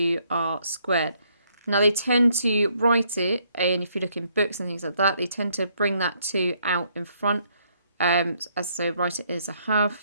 squared. Now they tend to write it, and if you look in books and things like that, they tend to bring that 2 out in front. So write it as a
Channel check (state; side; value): inverted; both; correlation -0.70